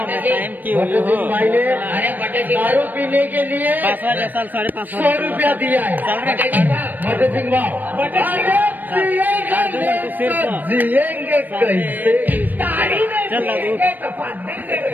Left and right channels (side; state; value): left; late; 0.088 ms